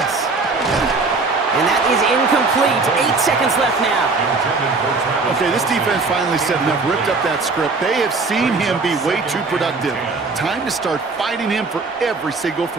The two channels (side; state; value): left; quieter; 3.9 dB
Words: And that is incomplete. 8 seconds left now. Okay, this defense finally set enough, ripped up that script. They have seen him be way too productive. Time to start fighting him for every single